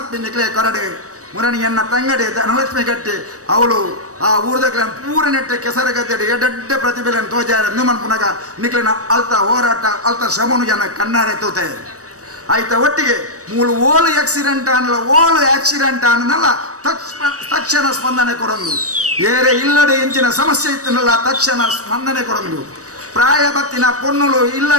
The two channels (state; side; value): late; left; 0.66 ms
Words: ನಿಕ್ಲೆ ಕೊರಡೆ ಮುರಣಿಯನ್ನ ತಂಗಡೆ ಧನಲಕ್ಷ್ಮಿ ಗಟ್ಟಿ ಅವಳು ಆ ಊರ್ದಕ್ಲ ಪೂರ ನೆಟ್ಟೆ ಕೆಸರ ಗದ್ದೆಡೆ ಎಡ್ಡೆ ಪ್ರತಿಭೆಯನ್ನು ತೋಜಾರ ಮನ್ಪುನಾಗ ನಿಕ್ಲಿನ ಅಲ್ತ ಹೋರಾಟ ಅಲ್ತ ಶ್ರಮನು ಜನ ಕಣ್ಣಾರೆ ತೂತೆ ಆಯ್ತ ಒಟ್ಟಿಗೆ ಮೂಲು ಓಲು ಆಕ್ಸಿಡೆಂಟ್ ಅನ್ನಲ್ಲ ತಕ್ಷಣ ಸ್ಪಂದನೆ ಕೊಡೊಂದು ಏರೆ ಇಲ್ಲದೆ ಎಂಚಿನ ಸಮಸ್ಯೆ ಇತ್ತನಲ್ಲ ತಕ್ಷಣ ಸ್ಪಂದನೆ ಕೊಡೊಂದು ಪ್ರಾಯ ಬತ್ತಿನ ಪೊಣ್ಣುಲು